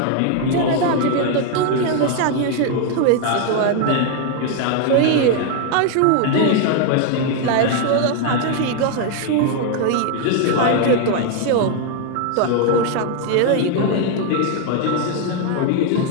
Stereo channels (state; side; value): different; both; correlation 0.00